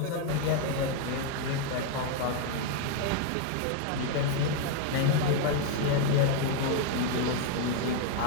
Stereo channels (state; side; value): different; both; correlation 0.00